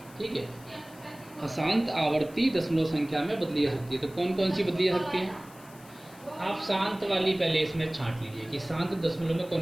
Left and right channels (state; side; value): noise; left; hiss, 23 dB below the sound